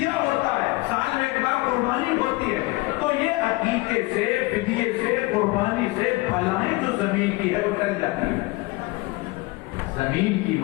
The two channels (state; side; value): quieter; right; 22.8 dB